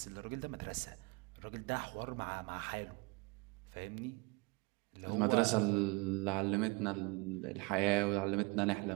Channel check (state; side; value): quieter; left; 28.3 dB